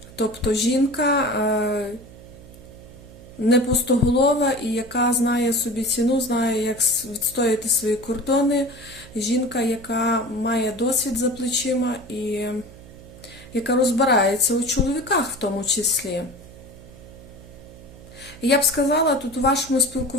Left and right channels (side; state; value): right; noise; hum, 19 dB below the sound